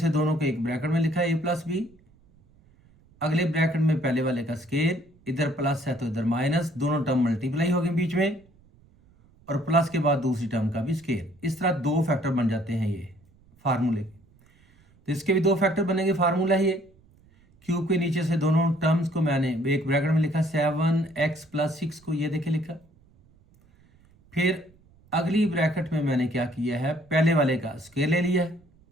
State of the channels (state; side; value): noise; right; rumble, 30 dB below the sound